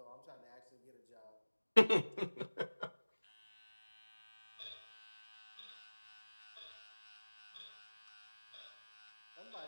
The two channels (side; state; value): both; inverted; correlation -1.00